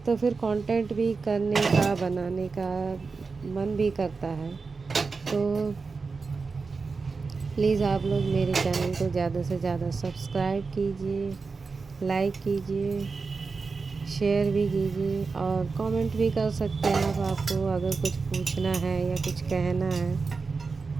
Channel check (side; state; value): left; quieter; 4.5 dB